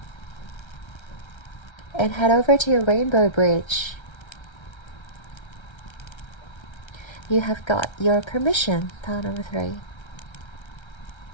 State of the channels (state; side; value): late; right; 1.3 ms